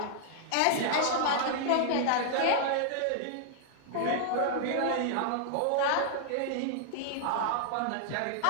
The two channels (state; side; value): different; both; correlation -0.01